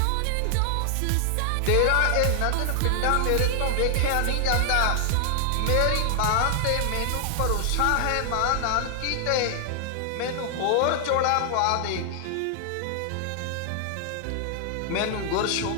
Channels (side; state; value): both; different; correlation 0.00